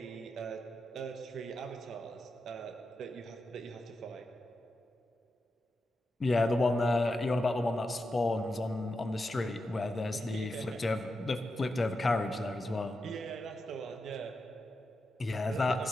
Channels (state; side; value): normal; both; correlation 0.88